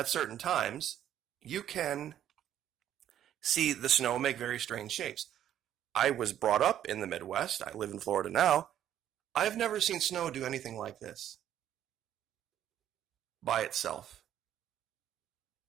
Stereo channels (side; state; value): left; quieter; 10.9 dB